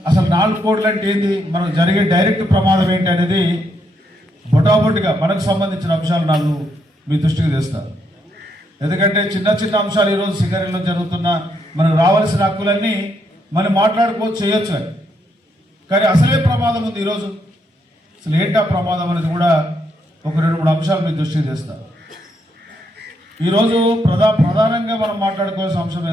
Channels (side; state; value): both; normal; correlation 0.77